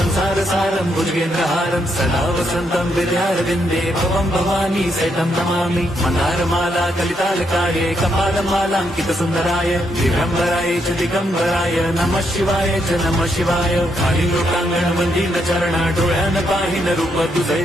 भुजगेन्द्रहारं सदा वसन्तं विद्यारविन्दे भवं भवानी सहितं नमामि। मन्दारमाला कलितालकाये कपालमालाङ्कितसुन्दराय दिगम्बराय च दिगम्बराय नमः शिवाय च नमः शिवाय। खाली लोकांगण वंदीन चरण डोळ्यान पाहिन रूप तुझे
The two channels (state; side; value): normal; both; correlation 0.77